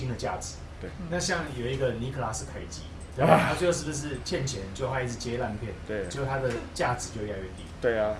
的价值。对，那像有一个尼克拉斯凯奇，对吧？他最后是不是欠钱，就他一直接烂片，对，就他的价值就越来越低。对啊，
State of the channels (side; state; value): both; identical; correlation 1.00